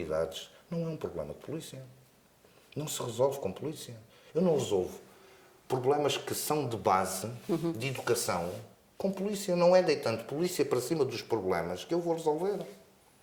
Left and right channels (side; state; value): both; identical; correlation 1.00